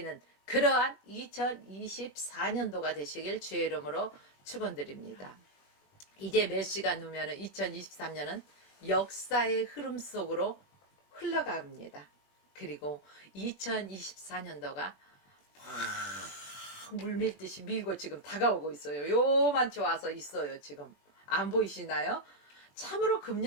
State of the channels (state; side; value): late; right; 21 ms